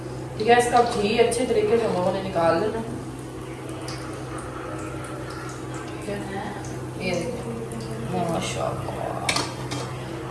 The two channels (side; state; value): both; identical; correlation 1.00